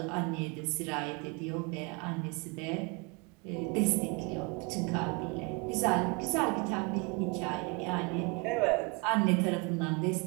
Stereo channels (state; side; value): quieter; left; 30.1 dB